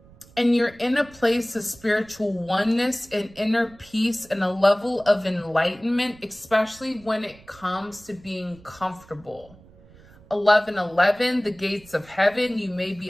And you're in a place of spiritual oneness and inner peace and a level of enlightenment, especially when it comes to being comfortable. 1111, the gates of heaven. You may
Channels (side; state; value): right; noise; rumble, 25 dB below the sound